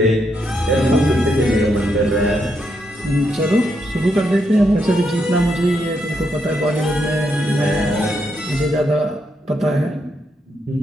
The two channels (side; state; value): both; normal; correlation 0.79